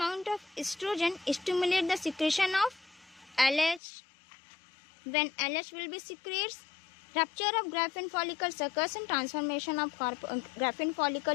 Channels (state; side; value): drops out; right; at 3.8 s